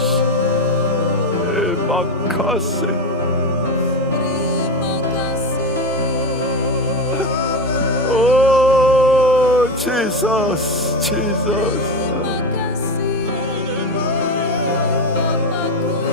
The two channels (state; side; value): normal; both; correlation 0.16